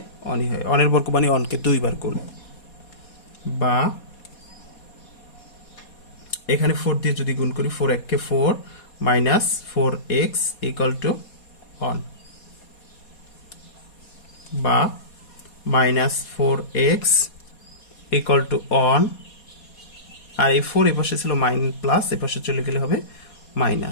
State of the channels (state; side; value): late; right; 4.2 ms